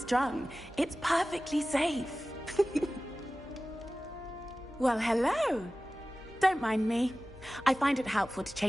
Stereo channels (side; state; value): left; noise; hum, 22 dB below the sound